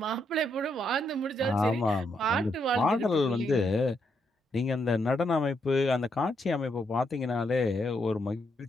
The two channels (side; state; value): both; normal; correlation 0.78